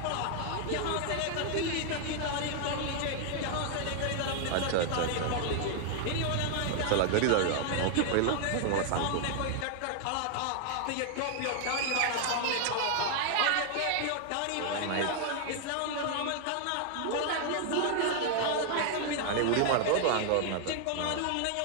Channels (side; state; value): both; different; correlation 0.00